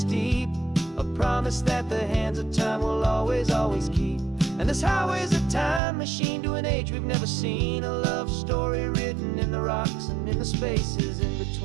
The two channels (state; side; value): drops out; left; at 5.8 s